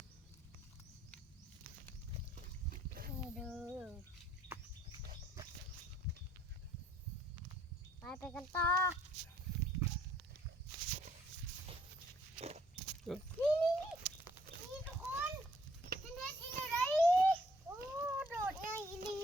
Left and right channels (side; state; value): both; normal; correlation 0.65